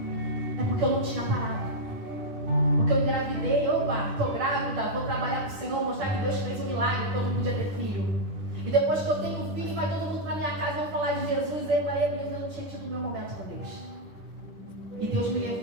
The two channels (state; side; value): late; left; 10 ms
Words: É porque eu não tinha parado. Porque eu engravidei, estou grávida, vou trabalhar com o Senhor, mostrar que Deus fez um milagre, que eu não podia ter filho. E depois que eu tenho filho, vai todo mundo para minha casa, vão falar de Jesus, eu não tinha tido o meu momento com Deus. E Deus me